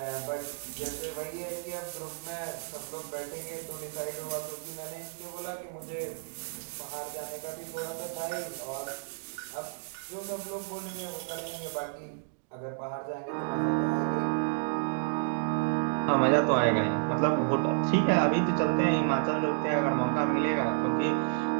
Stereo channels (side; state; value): left; silent; digital silence